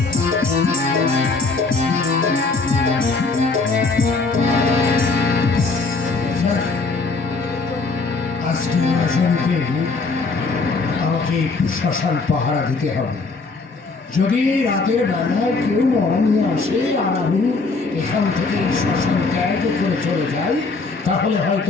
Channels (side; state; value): right; quieter; 3.9 dB